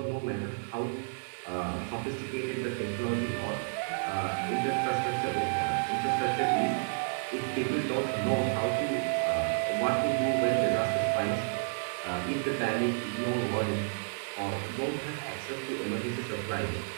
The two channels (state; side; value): silent; left; digital silence